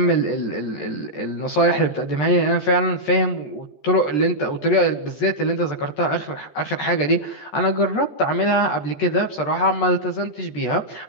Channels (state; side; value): late; right; 14 ms